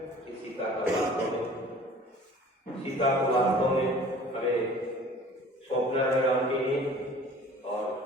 सीता का वास्तव में, सीता को वास्तव में हमें सौंपना है राम के लिए। और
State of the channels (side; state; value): both; normal; correlation 0.47